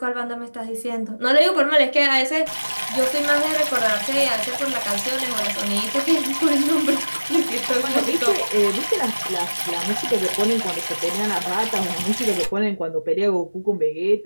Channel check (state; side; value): inverted; both; correlation -1.00